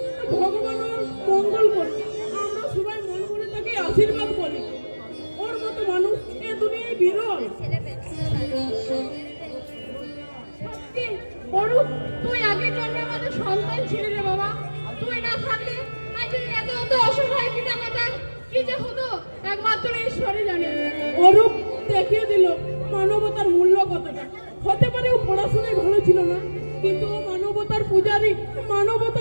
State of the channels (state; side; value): inverted; both; correlation -1.00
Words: ভগবান ওর মঙ্গল করছে। আমরা সবাই মন করে তাকে আশীর্বাদ করি। ওর মতো মানুষ এ দুনিয়ায় বিরল। সত্যি অরূপ, তুই আগের জন্মে আমাদের সন্তান ছিলি রে বাবা। তুই না থাকলে আজ এই এত এত অসহায় পিতামাতার কি যে হতো একমাত্র ঈশ্বরই জানে। অরূপ দেখিয়ে দিল মানবতার মূল্য কতটা। হতে পারে ও পড়াশোনায় ভালো ছিল না, কিন্তু ও মানবতার পূজারী,